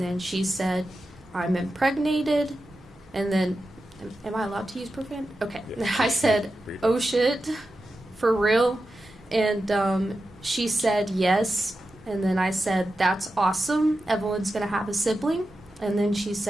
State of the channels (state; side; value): normal; both; correlation 0.91